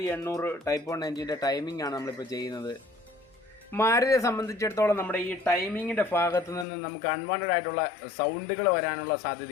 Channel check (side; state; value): right; drops out; at 6.7 s